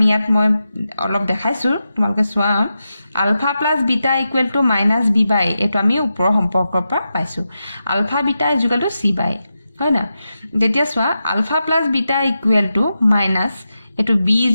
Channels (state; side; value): inverted; both; correlation -0.90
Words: ইয়াত মই অলপ দেখাইছোঁ, তোমালোকে চোৱা। Alpha plus beta equal to minus B by, এইটো আমি ওপৰৰ সম্পৰ্কৰ পৰা পাইছোঁ। Alpha beta is equal to C by, হয় না? যেতিয়া চোৱা alpha plus beta equal to minus, এইটো বি ইজ